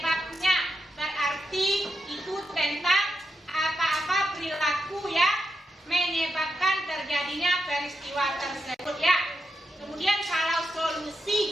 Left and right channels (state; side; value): normal; both; correlation 0.85